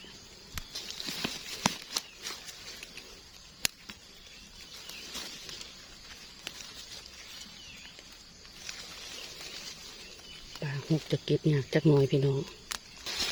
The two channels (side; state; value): both; identical; correlation 1.00